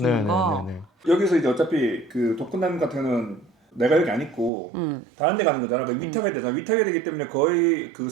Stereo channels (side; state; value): left; drops out; at 4.5 s